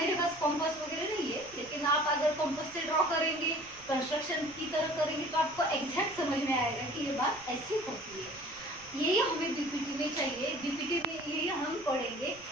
पास कॉम्पास वगैरह नहीं है, लेकिन आप अगर कॉम्पास से ड्रॉ करेंगे, कंस्ट्रक्शन की तरह करेंगे तो आपको एग्जैक्ट समझ में आएगा कि ये बात ऐसी होती है। यही हमें बीपीटी में चाहिए, बीपीटी में यही हम पढ़ेंगे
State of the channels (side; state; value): right; noise; rumble, 24 dB below the sound